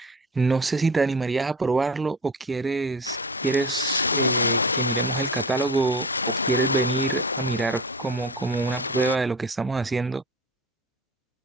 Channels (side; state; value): both; normal; correlation 0.33